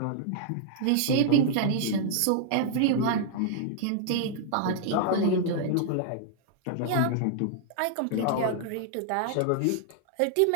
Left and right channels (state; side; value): different; both; correlation -0.01